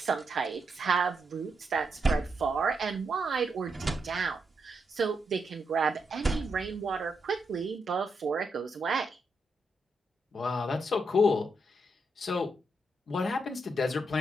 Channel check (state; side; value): normal; both; correlation 0.81